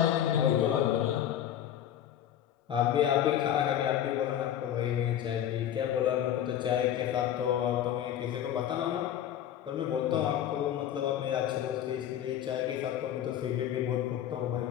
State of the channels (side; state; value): right; quieter; 10.6 dB